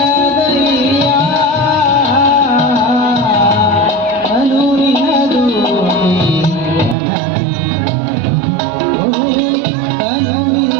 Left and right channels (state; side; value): drops out; left; at 7.0 s